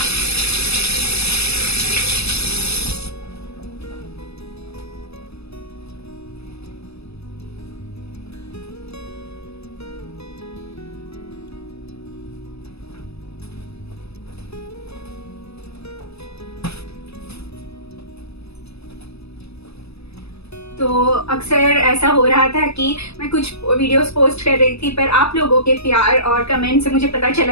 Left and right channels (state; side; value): late; right; 0.78 ms